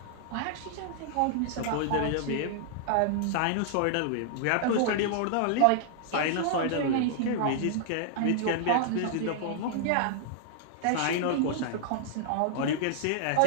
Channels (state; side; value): different; both; correlation -0.01